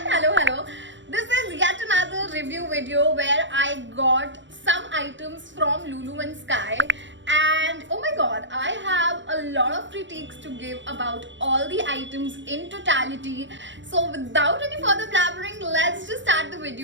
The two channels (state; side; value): late; left; 0.54 ms